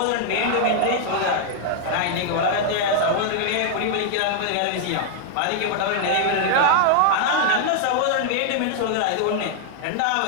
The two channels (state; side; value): different; both; correlation -0.01